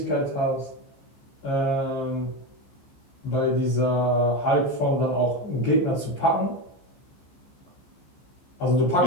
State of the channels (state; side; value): late; right; 15 ms